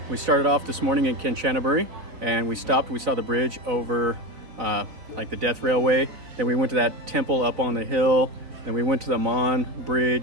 We started off this morning in Kanchanaburi, and we stopped. We saw the bridge over like the Death Railway. Then we went to that temple up on the hill. Then we went to the Mon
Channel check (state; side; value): late; left; 4.0 ms